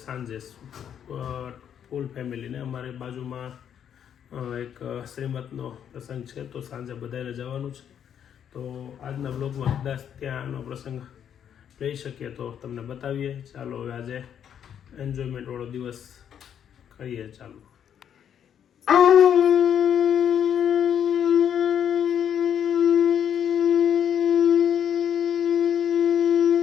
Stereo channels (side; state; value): right; quieter; 8.9 dB